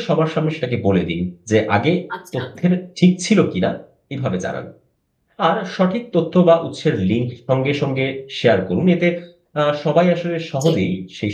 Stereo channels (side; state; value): both; identical; correlation 1.00